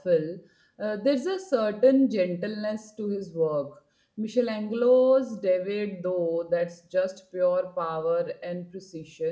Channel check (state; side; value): identical; both; correlation 1.00